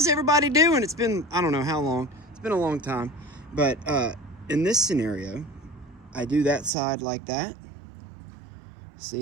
everybody doing? It's been, I don't know how long. It's been a long time. But in this scenario, I do that side like that.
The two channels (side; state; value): left; drops out; at 6.7 s